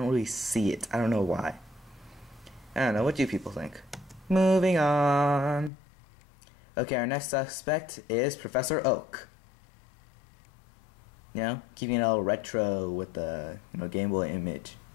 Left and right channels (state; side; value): drops out; right; at 5.7 s